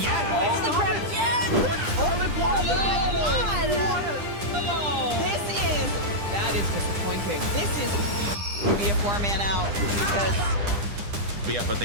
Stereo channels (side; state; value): left; late; 9.9 ms